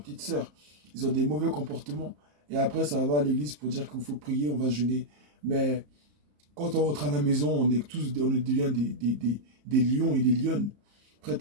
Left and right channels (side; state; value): left; late; 34 ms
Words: sœurs. Ils ont des mauvais comportements. Et après, ça va à l'église pour dire qu'il faut prier, on va jeûner. Mais quand on rentre à la maison, on devient des lions et des lionnes,